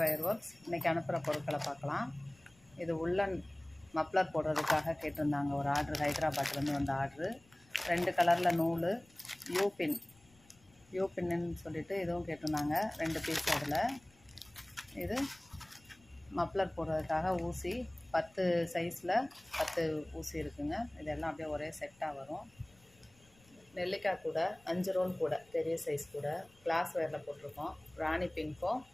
works. இன்றைக்கி அனுப்புகிற பொருட்களை பார்க்கலாம். இது உள்ளன் மப்ளர் போடுறதுக்காக கேட்டிருந்தாங்க ஒரு ஆர்டர், ஹைதராபாத்லேருந்து வந்த ஆர்டரு. 2 கலரில் நூல், யூபின்னு சொல்லிட்டு இதுவும் கேட்டிருந்தாங்க. 2 பீஸ். அதில் இது மப்ளர் போடுறதுக்காக ஊசி 10 சைஸில் 10 ஊசி இருக்குங்க. இதெல்லாம் அப்படியே ஒரே செட்டாக வரும். நெல்லிக்காய் கூட 5 ரோல் கூட, பெரிய சைஸ் கூட கிளாஸ் வேரில் போட்டிருக்கோம். ராணி பிங்க்கும்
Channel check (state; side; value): noise; left; rumble, 29 dB below the sound